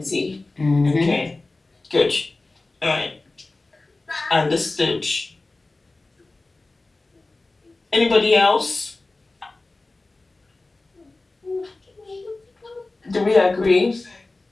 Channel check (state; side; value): quieter; right; 3.2 dB